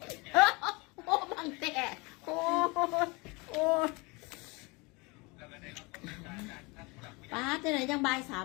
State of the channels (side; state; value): right; quieter; 26.9 dB